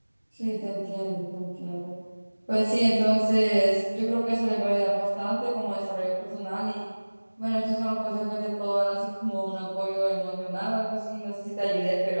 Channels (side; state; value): both; inverted; correlation -1.00